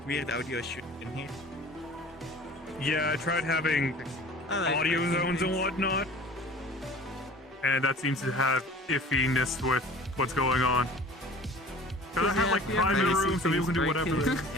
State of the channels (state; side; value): normal; both; correlation 0.44